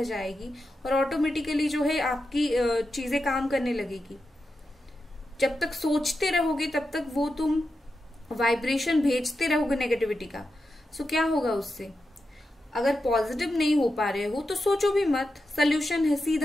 जाएगी और ऑटोमेटिकली जो है आपकी चीजें काम करने लगेगी। जब तक सोचते रहोगे तब तक वो तुम वाइब्रेशन भेजते रहोगे नेगेटिविटी का। सो क्या होगा उससे? अगर पॉजिटिव नहीं हो पा रहे हो तो सोचो भी मत, सोल्यूशन है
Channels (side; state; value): both; normal; correlation 0.89